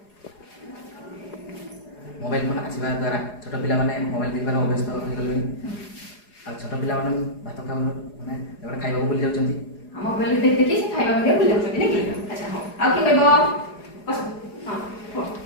ମୋବାଇଲ ଫୋନ ଆସିବା ଦ୍ୱାରା ଛୋଟ ପିଲାମାନେ ମୋବାଇଲ ଦେଖିବାର ଅଭ୍ୟସ୍ତ ହୋଇଗଲେଣି ଆଉ ଛୋଟ ପିଲାମାନେ ଭାତ ଖାଉନ ମାନେ ଏଗୁଡ଼ା ଖାଇବାକୁ ଭୁଲି ଯାଉଛନ୍ତି ମୋବାଇଲ ଦେଖି ଦେଖି ସେ ଖାଇବା ମଧ୍ୟ ଭୁଲି ଯାଉଛନ୍ତି ନାଇଁ କି ଆଚ୍ଛା ହଉ ଆଉ କିଏ କହିବ ବସ ହଁ କୁହ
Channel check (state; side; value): late; right; 4.8 ms